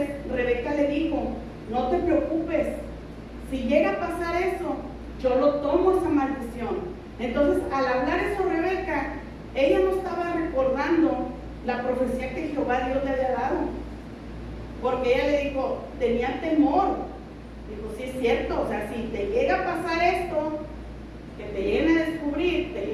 Rebeca le dijo, no te preocupes, si llega a pasar eso, yo lo tomo esa maldición. Entonces, al hablar eso Rebeca, ella no estaba recordando la profecía que Jehová Dios le había dado, porque ella le dijo, tenía temor. Dijo, sí es cierto, o sea, si te llega a pasar esto, que te lleguen a descubrir, te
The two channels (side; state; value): both; identical; correlation 1.00